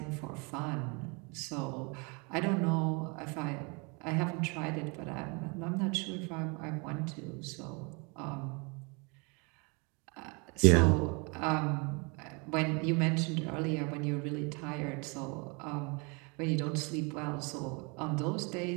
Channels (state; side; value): quieter; left; 31.0 dB